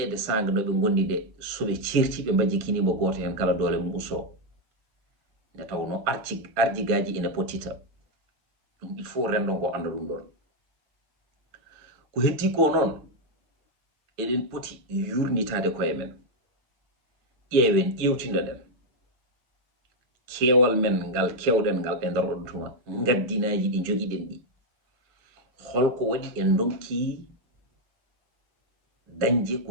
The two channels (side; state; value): left; late; 7.7 ms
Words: sanga no ɓe gondi nde soɓe certi ɓe majjikinimo goto hen kala doole mum usto nde tawno arjigaji ene pottita ɗum il faut rendo ngo anda ɗum ɗon ko heddi ko noon eɗen poti yurnitade koye men ƴeewen ƴewtinoɗen keewal men ngal kewɗen ngal e nder ɗon tuma gaddinaji ɗi jogiɗen ɗi holko waɗi en donki dañje ko